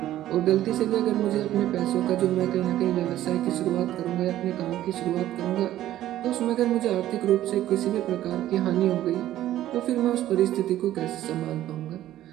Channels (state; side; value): quieter; left; 13.4 dB